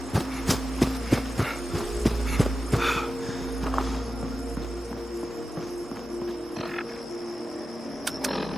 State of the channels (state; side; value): normal; both; correlation 0.92